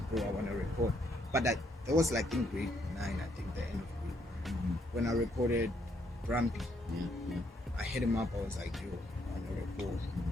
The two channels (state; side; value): normal; both; correlation 0.72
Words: bro, I want to record. But that was like in grade 9, I think, the end of grade. When I recorded Grumpy, I hit him up. I was like, yo, I want to record.